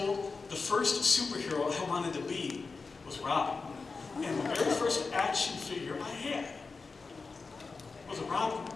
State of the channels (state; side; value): quieter; right; 4.3 dB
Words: the first superhero I wanted to be was Robin. And the very first action figure I had was a Robin.